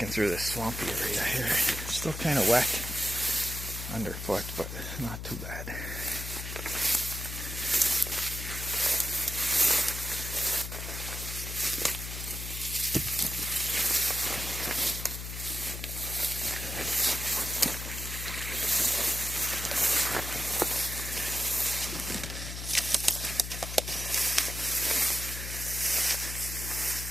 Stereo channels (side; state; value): left; noise; hum, 7 dB below the sound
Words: through this swampy area here. Still kind of wet underfoot, but not too bad.